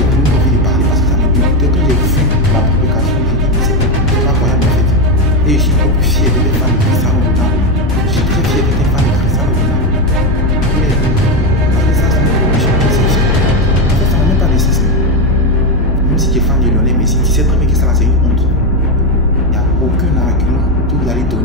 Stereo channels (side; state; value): both; normal; correlation 0.10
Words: plus envie de parler parce que ça me dégoûtait. Quand j'ai vu la publication, j'ai dit c'est pas croyable en fait. Et je suis beaucoup plus fier d'être fan de Cristiano Ronaldo. Je suis très fier d'être fan de Cristiano Ronaldo. Mais ça, c'est une condition exceptionnelle. En fait, ça n'a même pas de sens. Même si tu es fan de Lionel Messi, tu sais très bien que ça là c'est une honte. Il n'y a aucun argument que vous allez